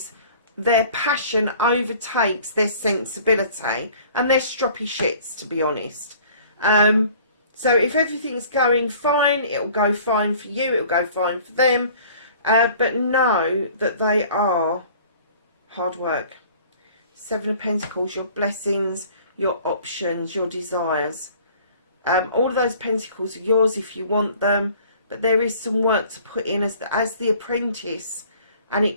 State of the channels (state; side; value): inverted; both; correlation -0.51